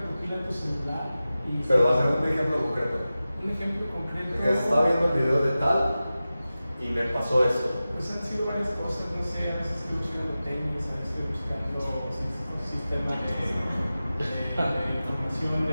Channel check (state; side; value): inverted; both; correlation -0.95